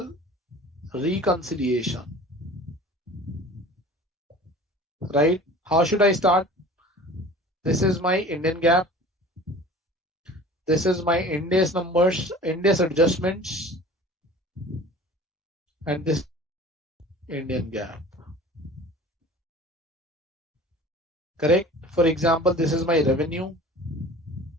reconciliation, right? How should I start? This is my Indian GAAP. This is my Ndas numbers, Ndas adjustments, and this Indian GAAP. Correct? For example, this is my revenue,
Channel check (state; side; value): normal; both; correlation 0.43